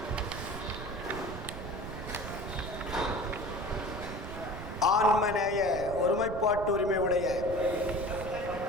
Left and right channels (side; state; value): right; noise; rumble, 9 dB below the sound